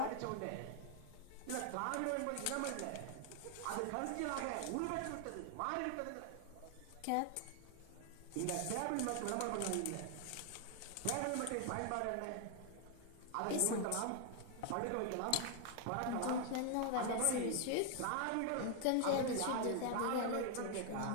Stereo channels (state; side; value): different; both; correlation 0.00